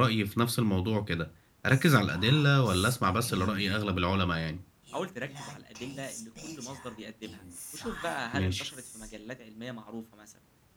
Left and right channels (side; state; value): both; identical; correlation 1.00